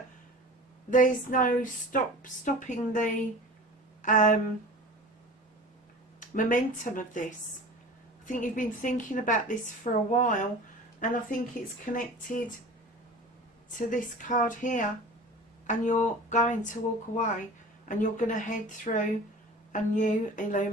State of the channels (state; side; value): normal; both; correlation 0.38